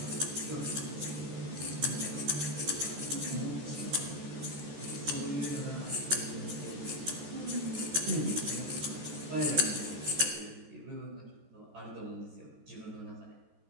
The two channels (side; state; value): left; late; 14 ms